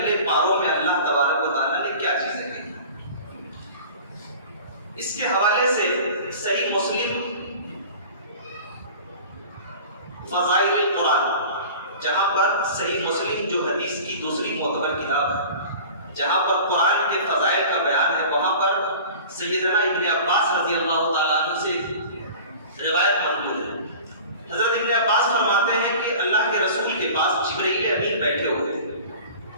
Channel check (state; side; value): inverted; both; correlation -0.40